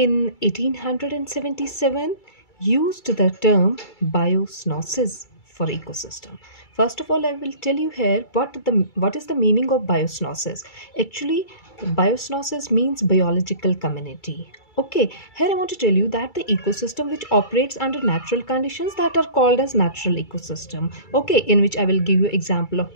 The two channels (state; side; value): late; right; 2.3 ms